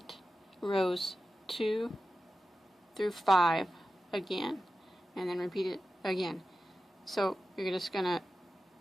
rows 2 through 5 again, and then repeat it again. So you're just going to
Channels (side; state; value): both; normal; correlation 0.92